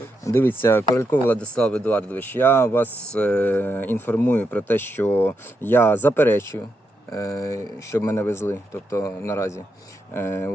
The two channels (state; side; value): normal; both; correlation 0.83